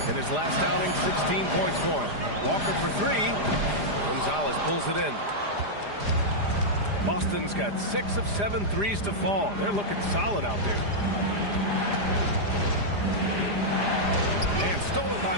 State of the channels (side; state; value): left; late; 4.9 ms